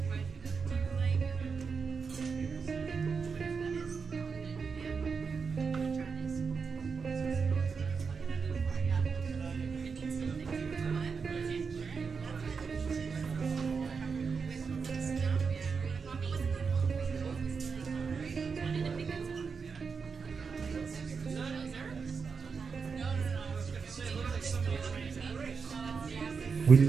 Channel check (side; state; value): left; quieter; 5.4 dB